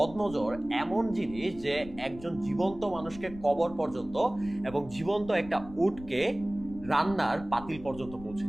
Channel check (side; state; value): left; noise; rumble, 16 dB below the sound